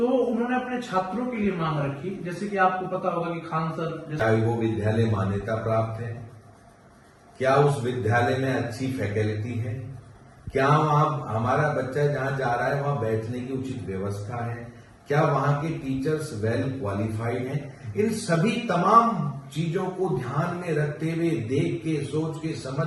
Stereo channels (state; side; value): identical; both; correlation 1.00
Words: उन्होंने अपने छात्रों के लिए मांग रखी, जैसे कि आपको पता होगा कि खान सर क्या वो विद्यालय मान्यता प्राप्त है, क्या उस विद्यालय में अच्छी फैकल्टी है, क्या वहां हमारा बच्चा जहां जा रहा है वहां बैठने की उचित व्यवस्था है, क्या वहां के टीचर्स वेल क्वालिफाइड हैं। इन सभी तमाम चीजों को ध्यान में रखते हुए, देख के, सोच के,